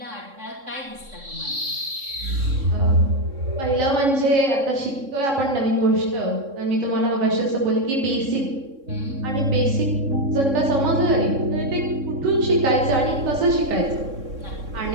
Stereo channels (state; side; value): late; left; 3.6 ms